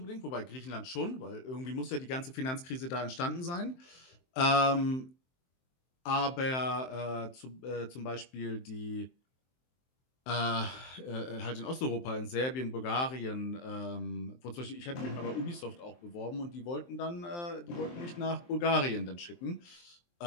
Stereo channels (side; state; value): right; late; 23 ms